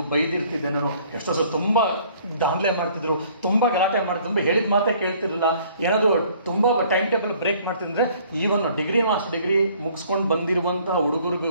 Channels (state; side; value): inverted; both; correlation -0.58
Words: ಬೈದಿರ್ತಿದ್ದೆ ನಾನು. ಎಷ್ಟೋ ಸರಿ ತುಂಬ ದಾಂಧಲೆ ಮಾಡ್ತಿದ್ರು, ತುಂಬ ಗಲಾಟೆ ಮಾಡ್ತಿದ್ರು, ತುಂಬ ಹೇಳಿದ ಮಾತೇ ಕೇಳ್ತಿರಲಿಲ್ಲ. ಏನಾದರೂ ತುಂಬ ಟೈಮ್ ಟೇಬಲ್ ಬ್ರೇಕ್ ಮಾಡ್ತಿದ್ರೆ ಈವನ್ ಮಾಸ್ಟರ್ ಡಿಗ್ರಿ ಮುಗಿಸ್ಕೊಂಡು ಬಂದಿರುವಂಥ